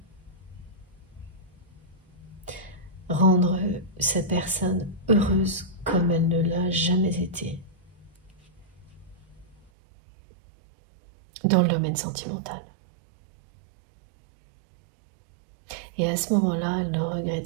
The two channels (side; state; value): left; drops out; at 9.7 s